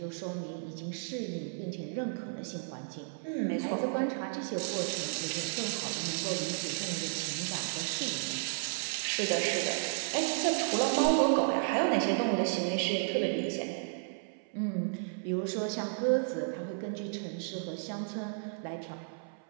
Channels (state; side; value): silent; left; 56 dB below the other